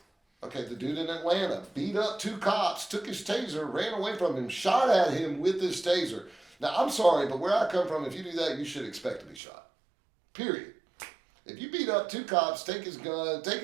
Okay, the dude in Atlanta beat up 2 cops, took his taser, ran away from him, shot at him with his taser. Now, I'm sorry, but where I come from, if you do that, you should expect to be shot. Period. If you beat up 2 cops, take his gun, take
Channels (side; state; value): left; drops out; at 9.4 s